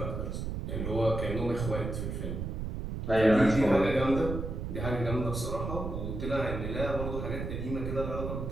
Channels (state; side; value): noise; right; rumble, 4 dB below the sound